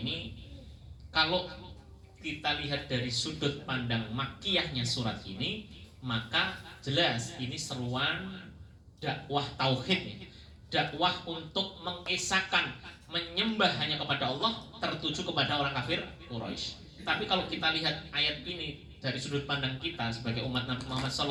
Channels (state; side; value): identical; both; correlation 1.00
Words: kalau kita lihat dari sudut pandang makkiyahnya surat ini, maka jelas ini seruan dakwah tauhid, dakwah untuk mengesahkan, menyembah hanya kepada Allah, tertuju kepada orang kafir Quraisy. Tapi kalau kita lihat ayat ini dari sudut pandang kita sebagai umat Nabi Muhammad